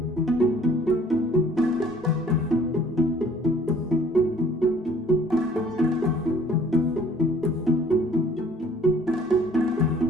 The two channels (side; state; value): both; normal; correlation 0.56